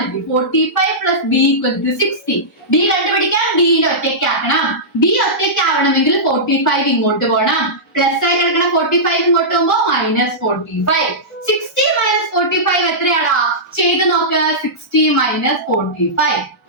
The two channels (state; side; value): normal; both; correlation -0.15